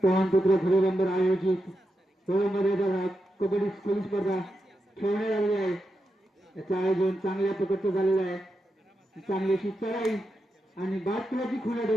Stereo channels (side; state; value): both; normal; correlation 0.87